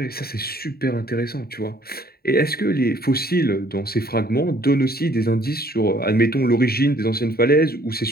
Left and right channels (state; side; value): late; right; 0.45 ms